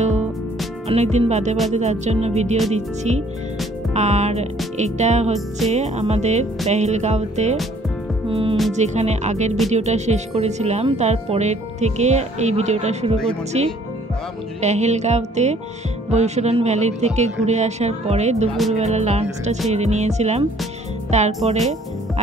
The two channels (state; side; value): normal; both; correlation 0.59